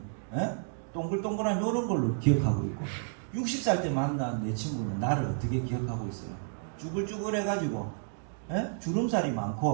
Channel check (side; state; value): left; silent; digital silence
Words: 동글동글한 이런 걸로 기억하고 있고 60살 때 만난 내 친구는 나를 어떻게 기억하고 있어요? 쭈글쭈글 해가지고 주름살이